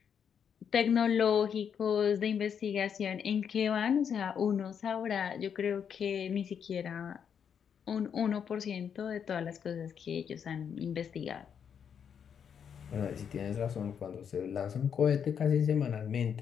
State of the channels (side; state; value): right; quieter; 7.6 dB